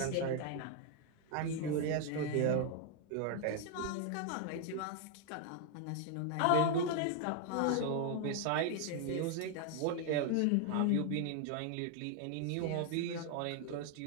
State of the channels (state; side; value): different; both; correlation 0.00